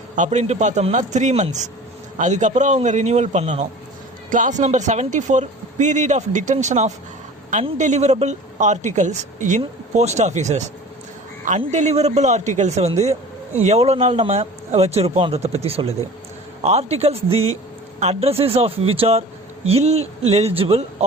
அப்படின்ட்டு பார்த்தோம்னா 3 months. அதுக்கப்புறம் அவங்க ரினியூவல் பண்ணணும். Clause number 74 period of detention of undeliverable articles in post offices. Undeliverable ஆர்டிகல்ஸை வந்து எவ்வளோ நாள் நம்ம வச்சுருப்போன்றதை பற்றி சொல்லுது. Articles the addresses of which are illegible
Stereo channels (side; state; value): both; normal; correlation 0.41